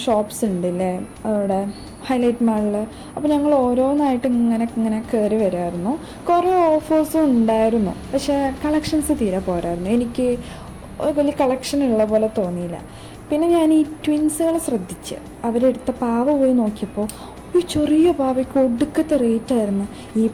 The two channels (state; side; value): identical; both; correlation 1.00